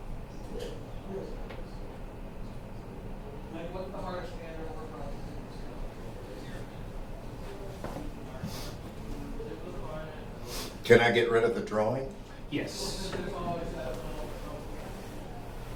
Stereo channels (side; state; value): both; identical; correlation 1.00